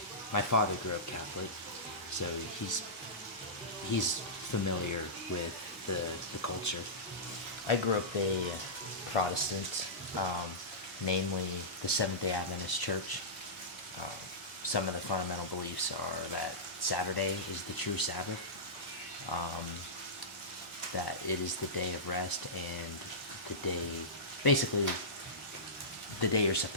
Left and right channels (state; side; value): normal; both; correlation -0.17